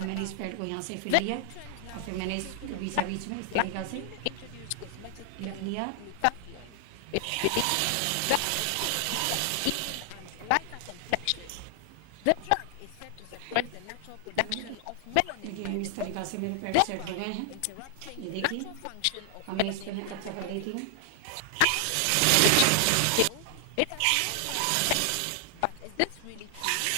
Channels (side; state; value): both; different; correlation 0.00